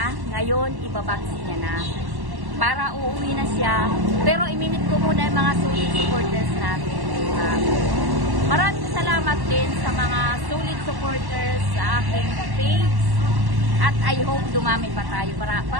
Ngayon, ibabaksi niya na. Para uuwi na siya. Pero iminit ko muna yung mga solid supporters natin. Maraming salamat din sa mga solid supporters sa aking page. At I hope dumami pa tayo para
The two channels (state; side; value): late; left; 1.1 ms